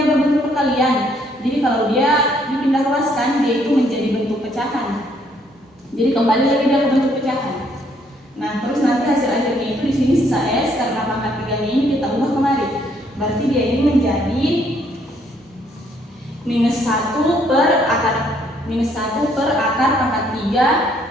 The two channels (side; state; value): both; normal; correlation 0.68